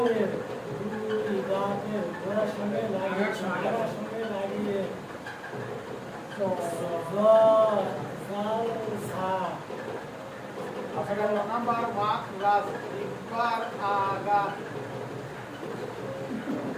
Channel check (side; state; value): both; identical; correlation 1.00